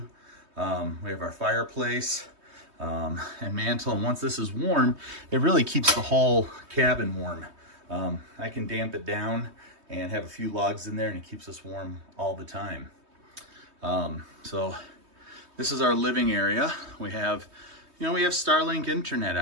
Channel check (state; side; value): late; left; 3.2 ms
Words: We have our fireplace and mantle, and once this is warm, it really keeps the whole cabin warm. I can damp it down and have a few logs in there, and it keeps us warm all the time. So this is our living area. We have Starlink internet